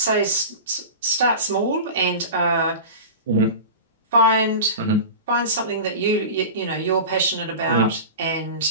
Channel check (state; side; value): inverted; both; correlation -0.31